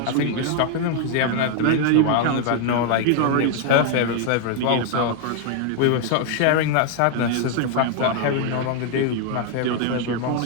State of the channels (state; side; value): different; both; correlation 0.00